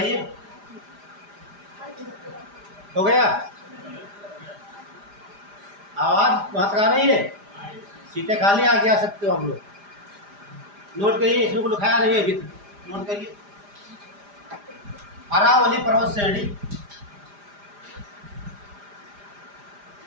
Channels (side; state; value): left; late; 4.9 ms